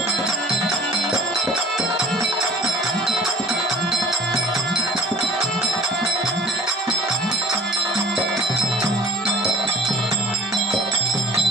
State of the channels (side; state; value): both; normal; correlation 0.47